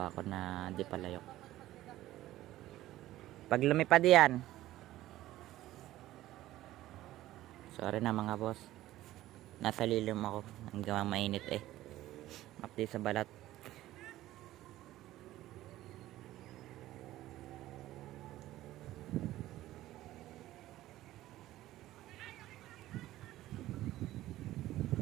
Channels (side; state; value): left; quieter; 15.2 dB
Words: ko na di palayok. Pag lumipad yan. Sorry na mga boss. Nasa lilim ako. Ang gawang mainit eh. Mapdi sa balat.